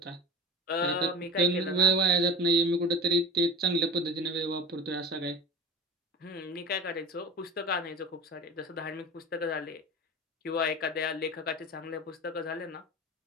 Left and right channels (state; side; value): normal; both; correlation 0.32